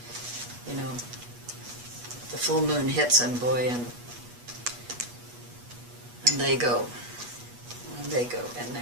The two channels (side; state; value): left; late; 8.3 ms